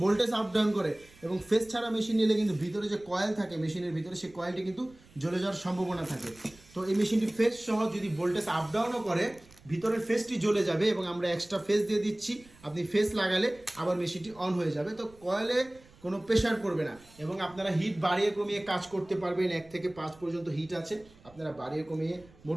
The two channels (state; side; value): noise; right; rumble, 25 dB below the sound